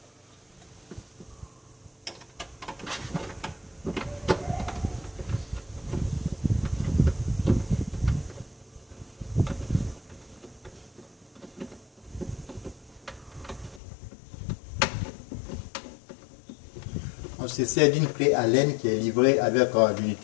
On se sert d'une clé Allen qui est livrée avec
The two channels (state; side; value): drops out; right; at 13.8 s